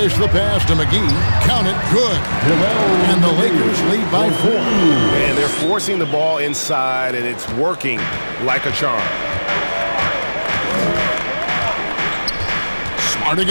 the pass to McGee. Count it, good. And the Lakers lead by 4. And they're forcing the ball inside, and it's working like a charm. Smart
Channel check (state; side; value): inverted; both; correlation -1.00